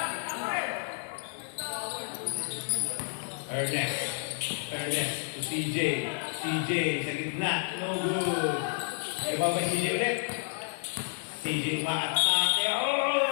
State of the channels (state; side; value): silent; right; 58 dB below the other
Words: Ernest to CJ. CJ sa gitna. No good. Iba ba CJ ulit? CJ umaatake.